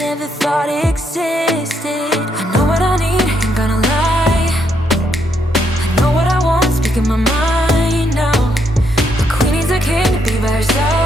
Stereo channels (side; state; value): both; normal; correlation 0.76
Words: thought existed. I know what I need, ain't gonna lie. I know what I want, speaking my mind now. A queen needs a king to be by her